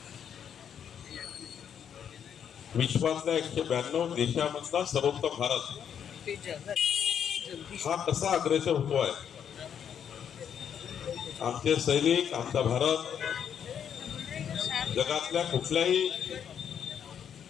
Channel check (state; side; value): quieter; right; 8.4 dB